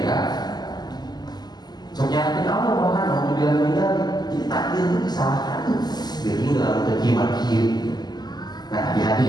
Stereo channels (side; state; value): right; late; 0.20 ms